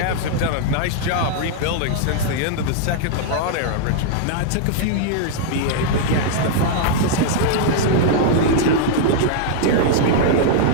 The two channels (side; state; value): both; different; correlation -0.01